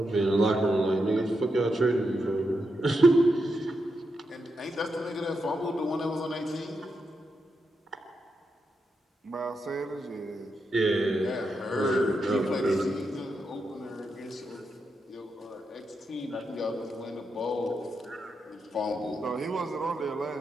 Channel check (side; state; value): both; normal; correlation 0.85